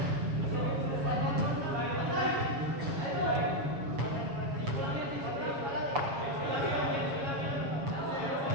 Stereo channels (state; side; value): late; left; 7.3 ms